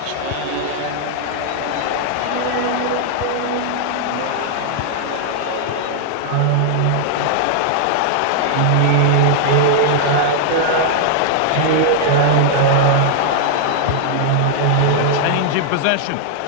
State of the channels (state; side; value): different; both; correlation -0.01